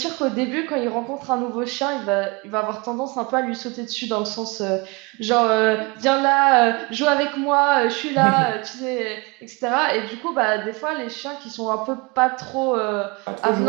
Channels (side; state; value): left; quieter; 27.0 dB